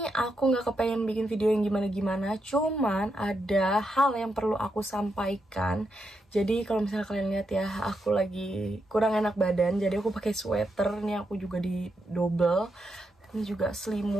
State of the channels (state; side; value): normal; both; correlation 0.83